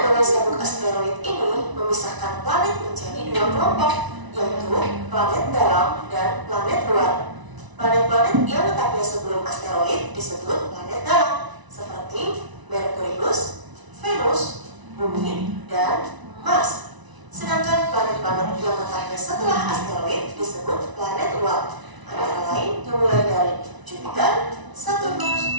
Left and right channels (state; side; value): late; left; 1.0 ms